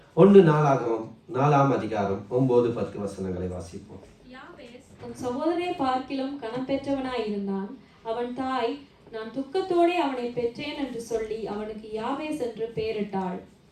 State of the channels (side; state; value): both; identical; correlation 1.00